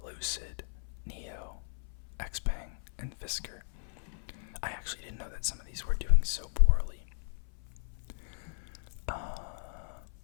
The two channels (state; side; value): silent; right; 54 dB below the other